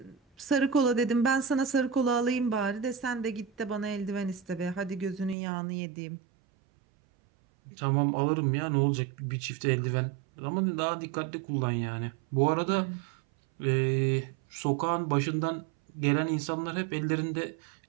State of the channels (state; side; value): drops out; left; at 5.4 s